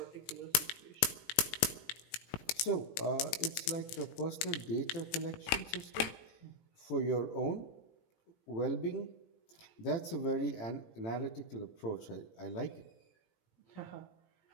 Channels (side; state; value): right; late; 18 ms